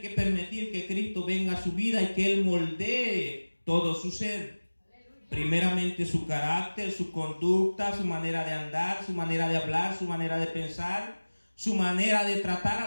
que permitir que Cristo venga a su vida y que Él moldee todo su ser. Primeramente su carácter, su conducta, su manera de andar, su manera de hablar, su manera de pensar, su manera de tratar a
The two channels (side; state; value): both; inverted; correlation -1.00